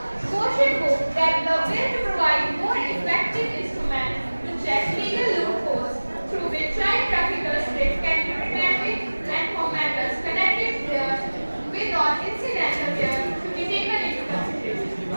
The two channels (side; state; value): both; inverted; correlation -1.00